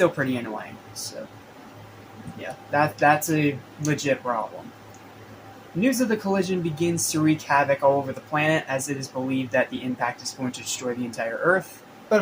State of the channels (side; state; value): both; identical; correlation 1.00